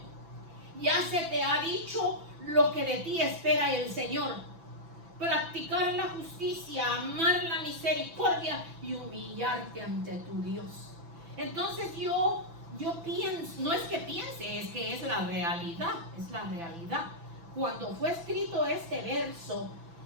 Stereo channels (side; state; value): left; late; 6.0 ms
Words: ya se te ha dicho lo que de ti espera el Señor: practicar la justicia, amar la misericordia y humillarte ante tu Dios. Entonces yo pienso, no es que piense, es que es la realidad, es la realidad. Cuando fue escrito este verso